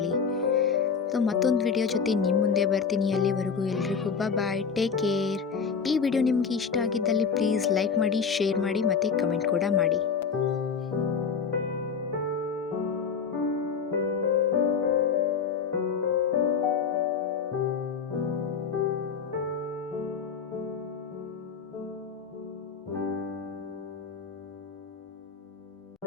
ಸೊ ಮತ್ತೊಂದು ವಿಡಿಯೋ ಜೊತೆ ನಿಮ್ಮ ಮುಂದೆ ಬರ್ತೀನಿ. ಅಲ್ಲಿವರೆಗೂ ಎಲ್ರಿಗೂ ಬಾಯ್, ಟೇಕ್ ಕೇರ್. ಈ ವಿಡಿಯೋ ನಿಮಗೆ ಇಷ್ಟ ಆಗಿದ್ದಲ್ಲಿ ಪ್ಲೀಸ್ ಲೈಕ್ ಮಾಡಿ, ಶೇರ್ ಮಾಡಿ ಮತ್ತು ಕಮೆಂಟ್ ಕೂಡ ಮಾಡಿ.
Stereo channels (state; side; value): quieter; right; 6.0 dB